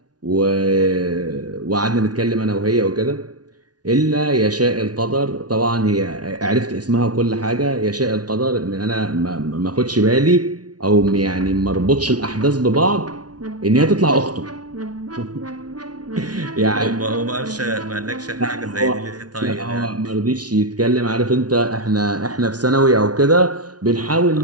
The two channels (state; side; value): late; left; 0.69 ms